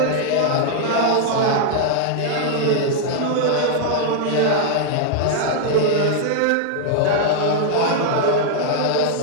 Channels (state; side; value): different; both; correlation -0.01